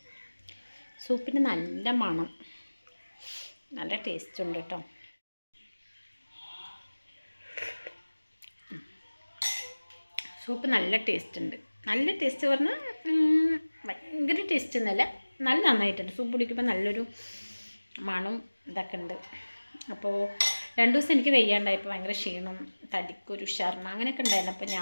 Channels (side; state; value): both; inverted; correlation -1.00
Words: സൂപ്പിന് നല്ല മണം, നല്ല ടേസ്റ്റ് ഉണ്ട് കേട്ടോ. സൂപ്പ് നല്ല ടേസ്റ്റ് ഉണ്ട്. നല്ല ടേസ്റ്റ് പറഞ്ഞാൽ ഭയങ്കര ടേസ്റ്റ് ഒന്നുമല്ല, നല്ല നന്നായിട്ടുണ്ട്. സൂപ്പ് കുടിക്കുമ്പോൾ നല്ലൊരു മണം ഇതൊക്കെ ഉണ്ട്. അപ്പോൾ 2 ദിവസം എനിക്ക് വെയ്യാണ്ടായപ്പോൾ ഭയങ്കര ക്ഷീണം, തടിക്കൊരു ഉഷാറിന് അങ്ങനെയൊക്കെ ഉണ്ടായിരുന്നു. അപ്പോൾ